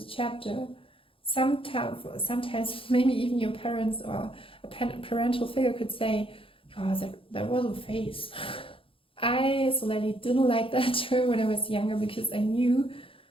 a chapter. Sometimes maybe even your parents or a parental figure could say, oh, that was a phase. I slightly didn't like that term when I was younger, because I knew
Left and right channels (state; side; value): late; right; 0.26 ms